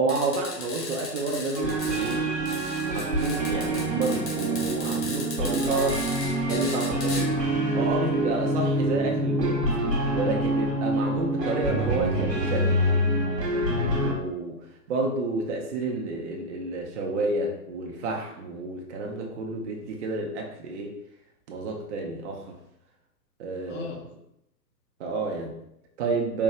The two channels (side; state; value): both; normal; correlation 0.17